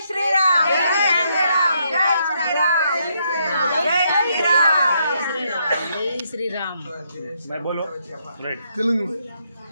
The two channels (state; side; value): inverted; both; correlation -0.75